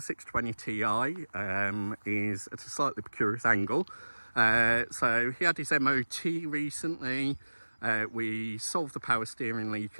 620 Ti is at a slightly precarious angle. So he had his MOT recently. We solved the power steering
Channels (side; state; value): both; inverted; correlation -1.00